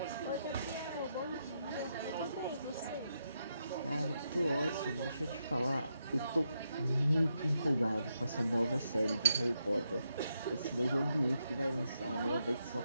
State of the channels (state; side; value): inverted; both; correlation -0.82